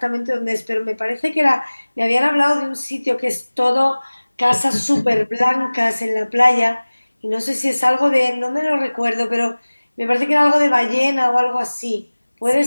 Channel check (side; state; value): both; inverted; correlation -1.00